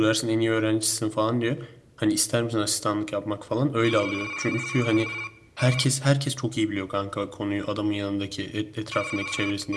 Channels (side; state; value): both; identical; correlation 1.00